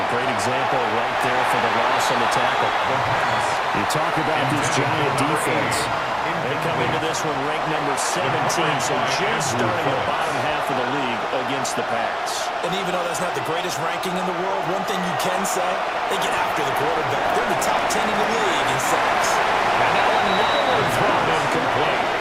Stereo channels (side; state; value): both; identical; correlation 1.00